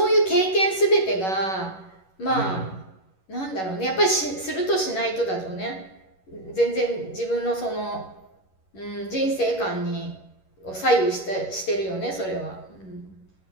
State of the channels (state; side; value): late; right; 11 ms